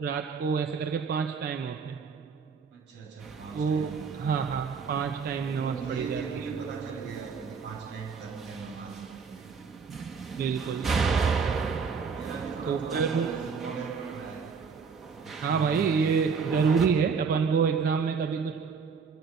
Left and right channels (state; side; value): quieter; left; 5.7 dB